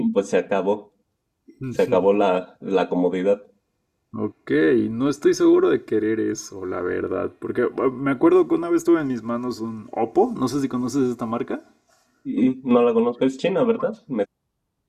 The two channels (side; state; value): both; identical; correlation 1.00